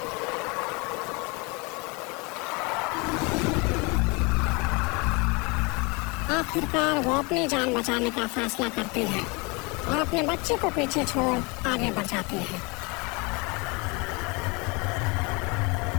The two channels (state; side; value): quieter; right; 28.4 dB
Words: आखिरकार वो अपनी जान बचाने का फैसला करती है और अपने बच्चे को पीछे छोड़ आगे बढ़ जाती है।